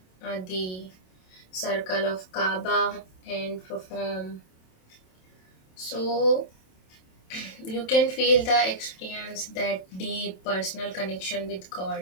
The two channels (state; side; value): late; right; 27 ms